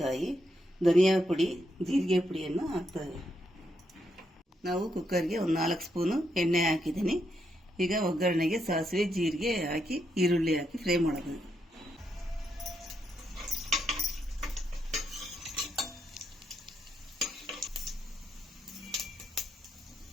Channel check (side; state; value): both; normal; correlation 0.79